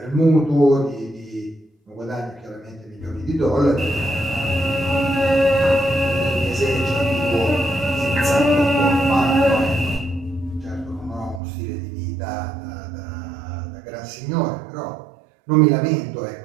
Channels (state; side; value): drops out; left; at 11.4 s